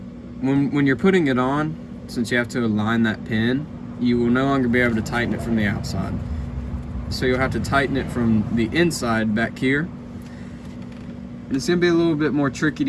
when you're putting it on, since you have to align that pin, you will no longer be able to tighten it from the outside. So you'll have to tighten it from the inside back here. And it's gonna be a little bit more tricky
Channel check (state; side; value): identical; both; correlation 1.00